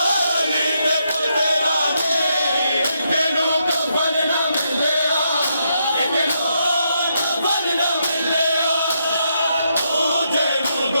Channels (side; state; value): both; inverted; correlation -0.79